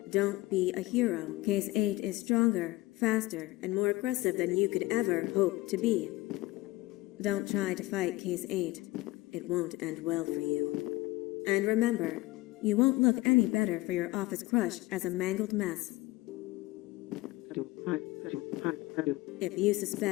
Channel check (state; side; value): quieter; right; 19.4 dB